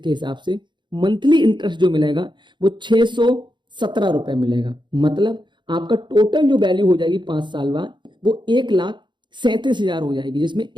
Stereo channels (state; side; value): late; left; 0.22 ms